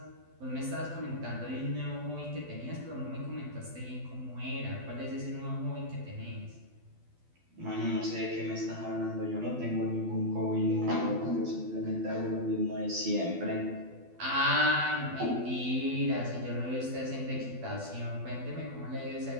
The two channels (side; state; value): left; late; 12 ms